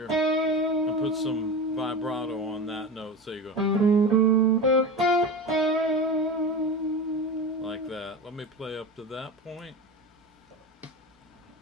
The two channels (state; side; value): normal; both; correlation 0.27